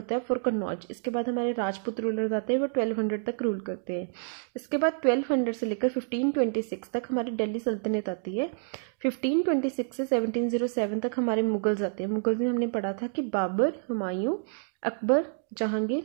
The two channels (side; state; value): left; silent; digital silence